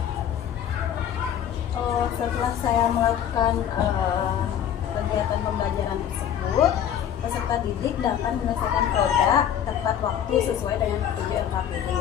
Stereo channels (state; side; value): quieter; right; 9.7 dB